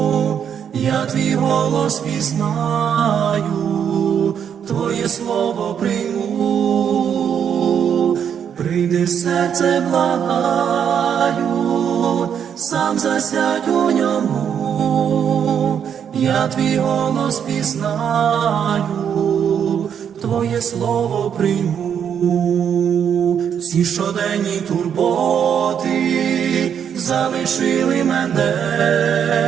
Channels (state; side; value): quieter; left; 8.2 dB